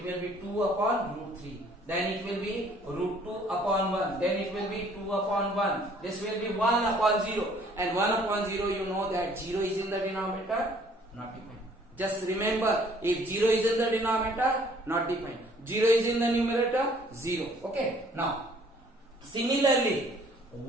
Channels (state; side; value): normal; both; correlation 0.58